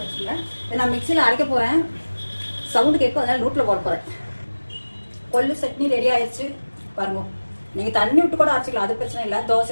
வச்சுக்கோங்க. இதை நான் மிக்சியில் அரைக்க போகிறேன். சவுண்டு கேட்கும், அதனால நோட்டில் போட போகிறேன். கொள்ளு சட்னி ரெடி ஆயிடுச்சு பாருங்க. நீங்கள் தண்ணி விட்டு கூட அரைச்சிக்கலாம், அது பிரச்சனை இல்லை.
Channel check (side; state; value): both; inverted; correlation -1.00